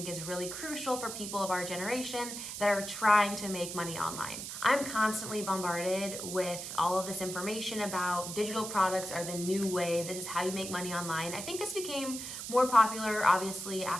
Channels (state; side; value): noise; right; hiss, 7 dB below the sound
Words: is really crucial for people of our generation that are trying to make money online. I'm constantly bombarded with all of this information about digital products are the new wave. This is how you make money online. I think this became more popular obviously